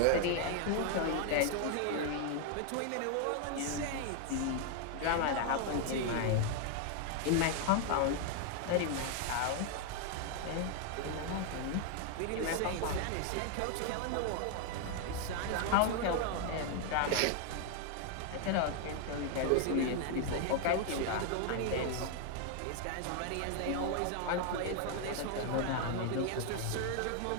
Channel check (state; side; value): different; both; correlation 0.00